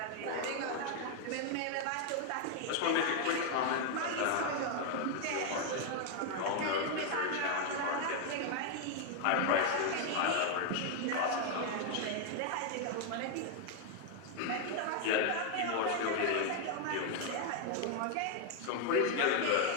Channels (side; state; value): both; different; correlation 0.00